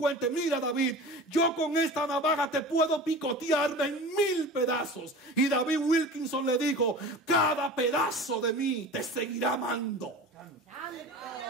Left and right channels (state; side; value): normal; both; correlation 0.36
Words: mira, David, yo con esta navaja te puedo picotearme en 1000 pedazos. Y David Wilkinson le dijo: cada pedazo de mí te seguirá amando.